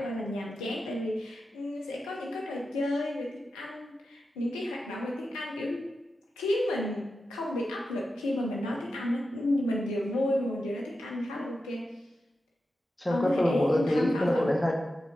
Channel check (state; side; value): normal; both; correlation 0.91